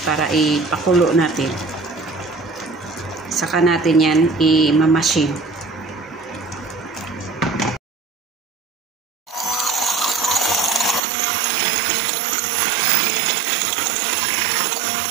para ipakulo natin. Saka natin yan i-mamasin.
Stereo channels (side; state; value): left; drops out; at 11.0 s